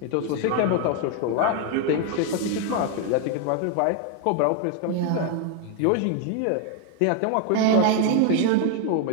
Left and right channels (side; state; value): both; different; correlation 0.01